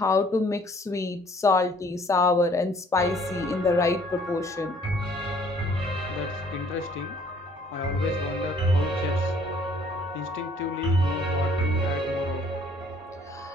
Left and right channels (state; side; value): normal; both; correlation 0.59